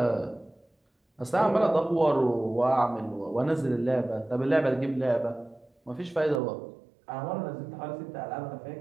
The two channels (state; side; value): drops out; left; at 6.4 s